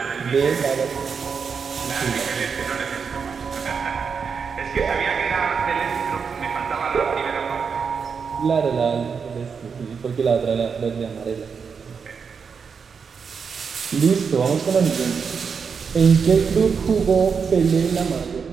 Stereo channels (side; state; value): left; quieter; 6.0 dB